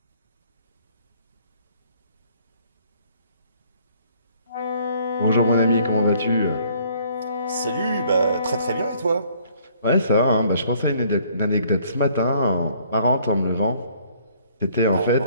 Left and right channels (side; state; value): both; inverted; correlation -0.61